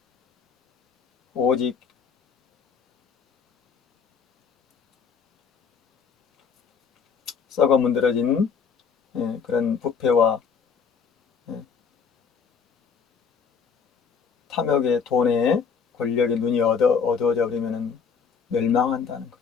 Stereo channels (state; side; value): quieter; right; 6.2 dB